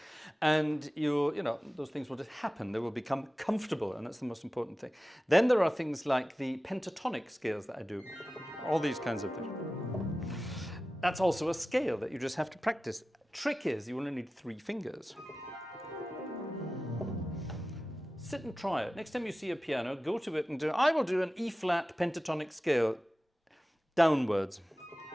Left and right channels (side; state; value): both; normal; correlation 0.95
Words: and those things will just happen. They will become comfortable, and that's the most important thing. Then there are things like the pentatonic scales that I do, all these kinds of things. That's also a scale that you just have to practice. Trick is you only need 3 fingers. Sit and try it. Next time you see a piano, go to it and do, I will do an E flat pentatonic scale downwards.